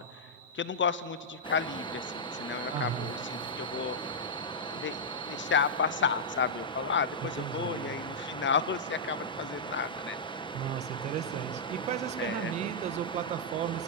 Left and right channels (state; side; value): normal; both; correlation -0.08